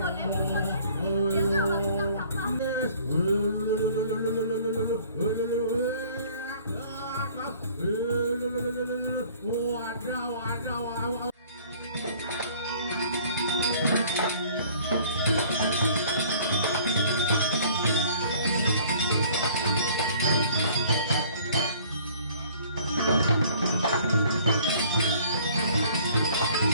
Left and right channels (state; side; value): inverted; both; correlation -0.54